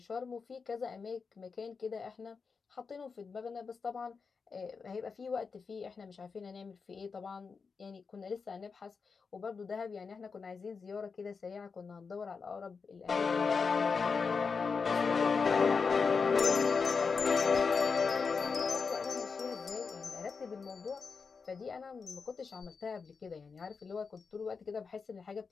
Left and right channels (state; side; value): quieter; right; 5.2 dB